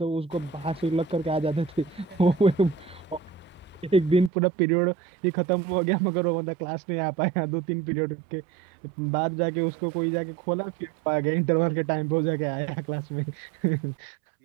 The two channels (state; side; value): drops out; left; at 4.3 s